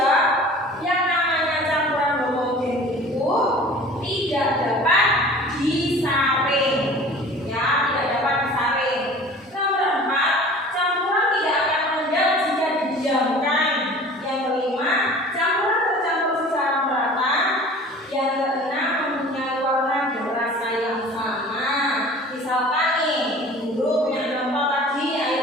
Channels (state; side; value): normal; both; correlation 0.44